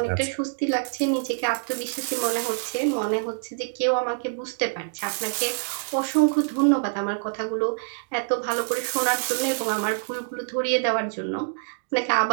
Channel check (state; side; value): silent; left; digital silence